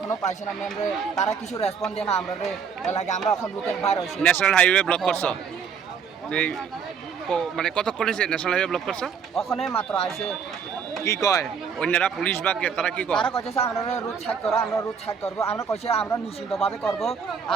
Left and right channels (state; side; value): quieter; left; 6.6 dB